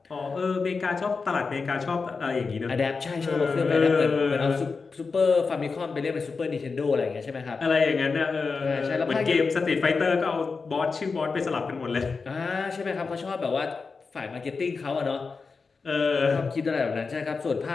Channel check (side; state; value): right; quieter; 4.6 dB